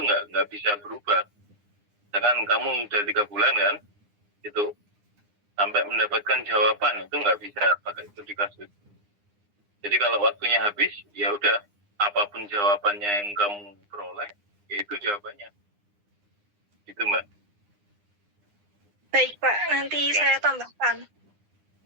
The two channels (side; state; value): left; late; 9.8 ms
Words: nggak bisa berubah. Misalkan kamu udah 3 bulan kan, itu sampai mendapatkan jawaban itu nggak bisa pakai studi kasus. Jadi kalau waktunya habis, ya udah apapun jawabannya yang kamu peroleh, ya itu jawabannya. Gitu Mbak. Baik Pak, nanti saya tambahkan.